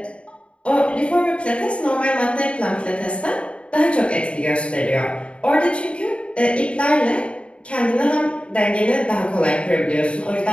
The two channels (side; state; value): right; late; 0.059 ms